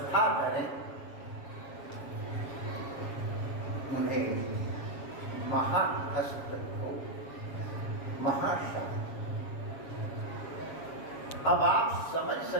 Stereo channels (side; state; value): right; late; 7.2 ms